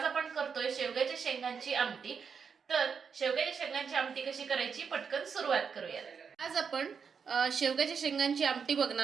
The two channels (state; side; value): quieter; left; 6.2 dB